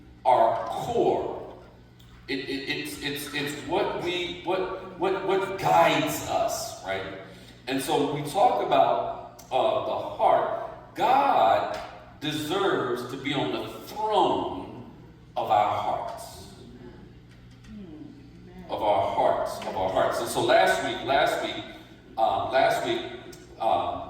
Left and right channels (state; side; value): identical; both; correlation 1.00